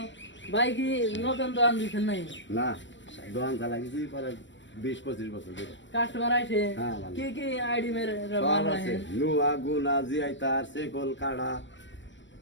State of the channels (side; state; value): right; late; 0.54 ms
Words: ভাই কি নতুন দোকান দিচ্ছেন নাই? না দোকান চালাইছি পরে 20-25 বছর ধরে। কাস্টমার আছে হ্যাঁ, ভালো। কি কি আইডি মেরে সব আছে নুয়া গুনা জিআইতার সেকল কাড়া